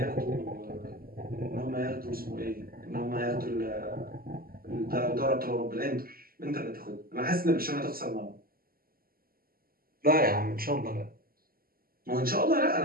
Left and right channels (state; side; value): late; left; 0.43 ms